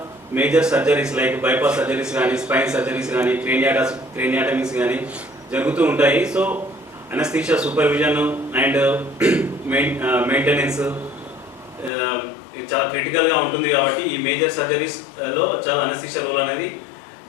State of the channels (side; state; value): right; drops out; at 11.9 s